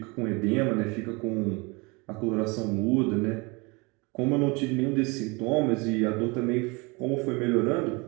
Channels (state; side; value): quieter; left; 27.7 dB